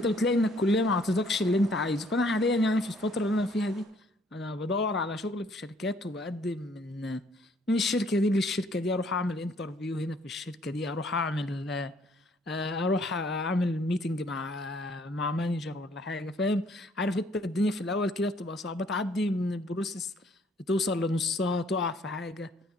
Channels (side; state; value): both; normal; correlation 0.63